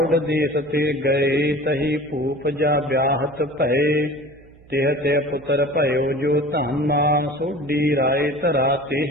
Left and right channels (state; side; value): noise; right; hum, 26 dB below the sound